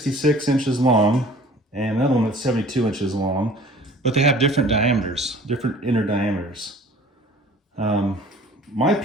inches long and another one that's 72 inches long, but they have different diameters, different inner diameters. My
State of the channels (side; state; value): both; normal; correlation 0.49